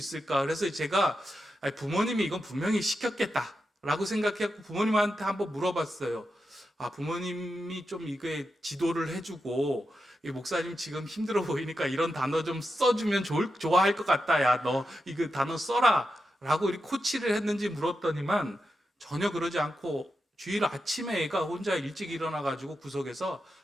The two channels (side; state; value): both; normal; correlation 0.88